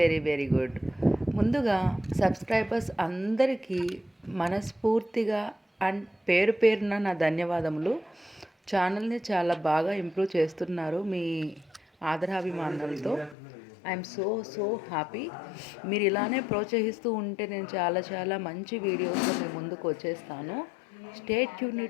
very good. ముందుగా సబ్స్క్రైబర్స్ అందరికీ మనస్ఫూర్తిగా అండ్ పేరు పేరున నా ధన్యవాదములు. ఛానల్ని చాలా బాగా ఇంప్రూవ్ చేస్తున్నారు మీ ఆదరాభిమానాలతో. I'm so happy. మీరు ఇలానే ప్రోత్సహిస్తూ ఉంటే నేను చాలా మంచి వీడియోస్తో మీ ముందుకు వచ్చేస్తాను. Stay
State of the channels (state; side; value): drops out; right; at 13.4 s